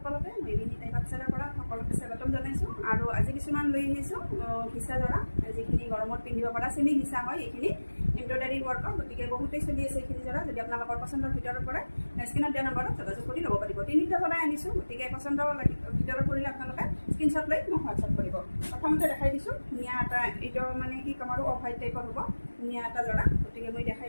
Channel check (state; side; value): inverted; both; correlation -1.00